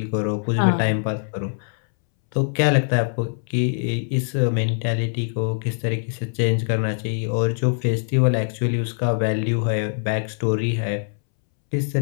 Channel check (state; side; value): silent; right; 64 dB below the other